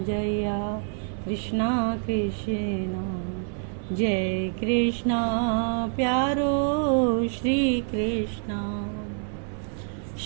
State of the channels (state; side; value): silent; left; 56 dB below the other